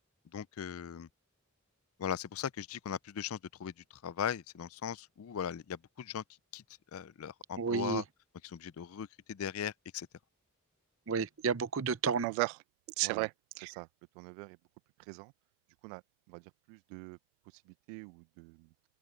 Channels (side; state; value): left; drops out; at 12.2 s